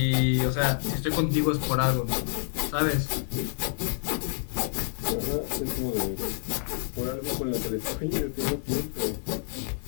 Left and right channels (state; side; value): silent; right; digital silence